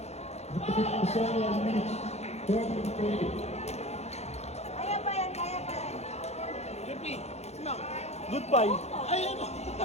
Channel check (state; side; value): late; right; 0.31 ms